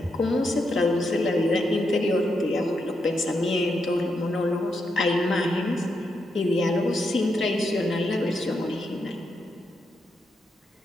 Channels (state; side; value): normal; both; correlation 0.83